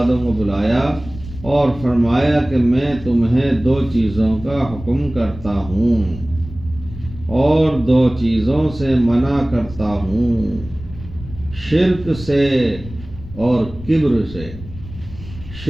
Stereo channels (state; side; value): noise; left; rumble, 14 dB below the sound